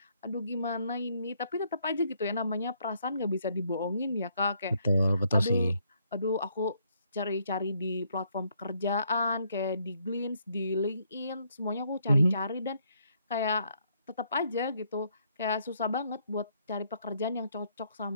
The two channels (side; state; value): both; inverted; correlation -0.71